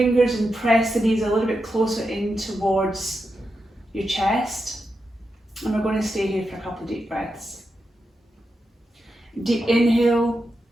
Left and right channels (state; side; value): normal; both; correlation 0.88